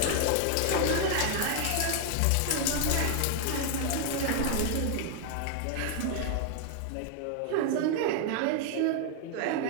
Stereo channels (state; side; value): different; both; correlation 0.00